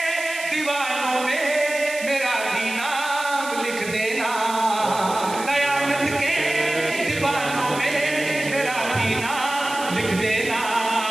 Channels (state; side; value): noise; right; hiss, 12 dB below the sound